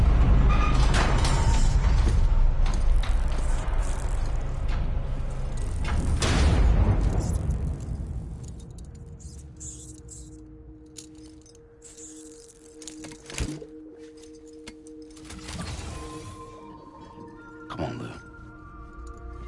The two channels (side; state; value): both; identical; correlation 1.00